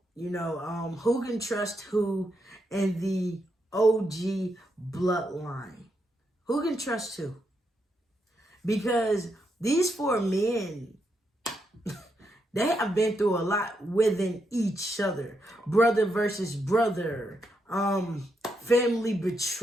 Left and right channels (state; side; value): normal; both; correlation 0.81